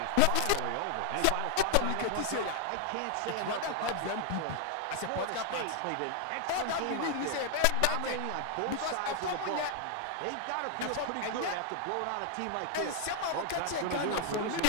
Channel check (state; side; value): different; both; correlation 0.00